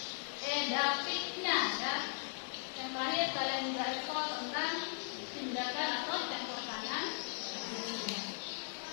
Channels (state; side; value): silent; right; digital silence